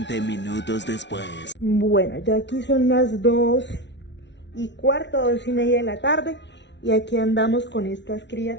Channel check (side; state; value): right; late; 0.51 ms